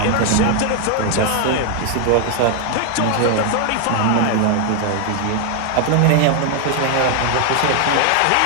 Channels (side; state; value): both; different; correlation 0.01